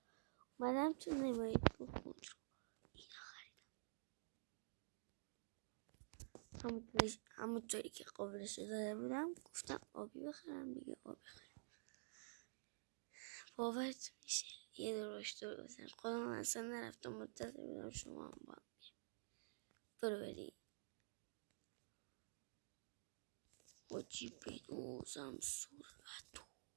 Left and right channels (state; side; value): silent; left; digital silence